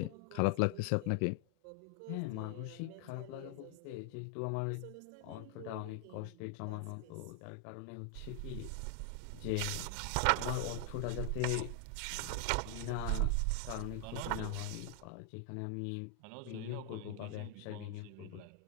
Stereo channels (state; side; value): different; both; correlation 0.00